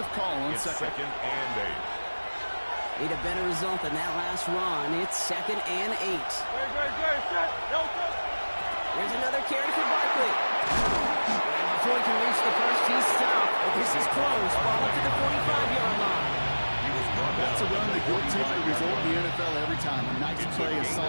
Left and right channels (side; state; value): both; inverted; correlation -1.00